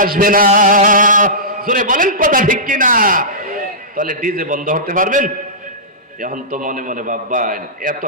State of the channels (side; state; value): both; normal; correlation -0.18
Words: আসবে না? জোরে বলেন কথা ঠিক কিনা? তাহলে ডিজে বন্ধ করতে পারবেন? এখন তো মনে মনে ভাববেন এত